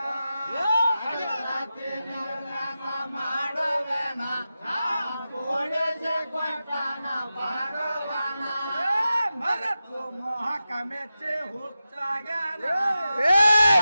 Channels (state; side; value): inverted; both; correlation -0.92